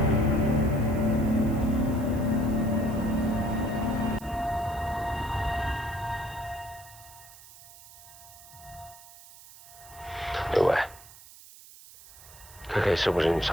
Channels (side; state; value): right; noise; hiss, 20 dB below the sound